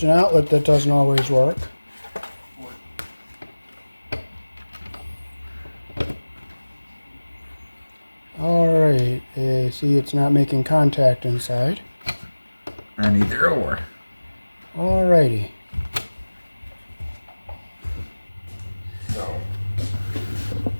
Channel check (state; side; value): inverted; both; correlation -1.00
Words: outlet that doesn't always work. Alright, see it's not making contact inside. On either or. Alrighty. So